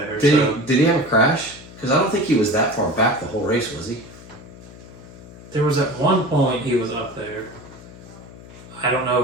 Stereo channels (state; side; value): noise; left; hum, 18 dB below the sound